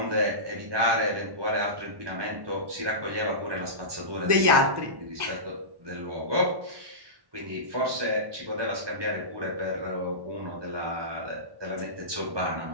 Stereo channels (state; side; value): late; left; 1.1 ms